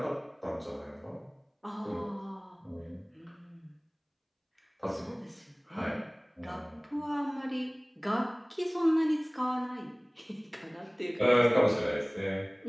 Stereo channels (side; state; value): both; identical; correlation 1.00